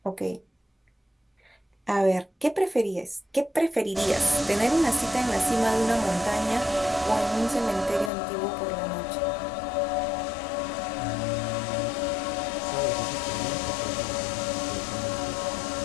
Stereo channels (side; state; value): right; drops out; at 8.1 s